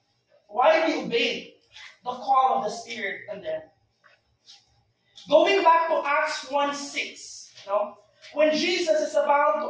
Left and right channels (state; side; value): identical; both; correlation 1.00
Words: Why they obeyed the call of the Spirit in them? Going back to Acts 1:6, when Jesus is about